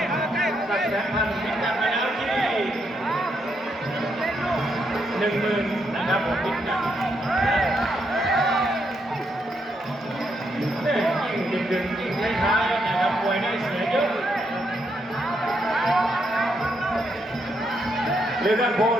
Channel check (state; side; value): normal; both; correlation 0.78